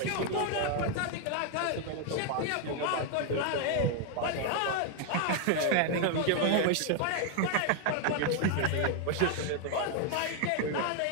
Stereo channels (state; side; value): different; both; correlation 0.01